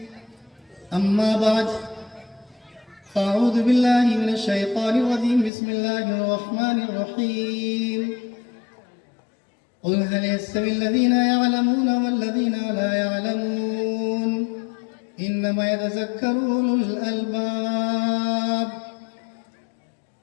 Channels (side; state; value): right; drops out; at 5.5 s